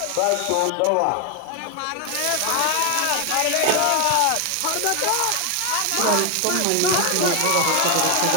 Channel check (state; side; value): different; both; correlation 0.01